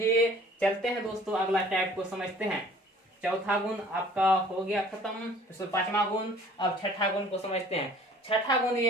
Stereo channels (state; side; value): normal; both; correlation 0.52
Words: चलते हैं दोस्तों अगला टाइप को समझते हैं। चौथा गुण आपका हो गया खत्म, इसमें 5वां गुण। अब छठा गुण को समझते हैं। छठा गुण